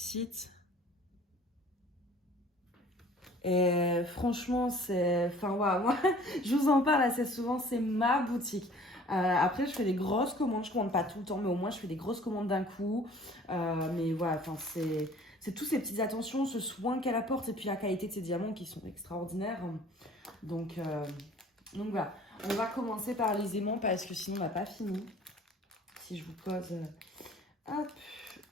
Et franchement, c'est... Enfin, ouais, moi, je vous en parle assez souvent, c'est ma boutique. Après, je fais des grosses commandes, je commande pas tout le temps, mais au moins, je fais des grosses commandes d'un coup. Mais voilà, enfin, c'est toutes ces petites attentions, ce soin qu'elle apporte, et puis la qualité de ses diamants qui sont extraordinaires. Donc voilà, on va commencer par les aimants, parce que sinon, on n'a pas fini. Si je vous pose... hop.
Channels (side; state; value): both; normal; correlation 0.50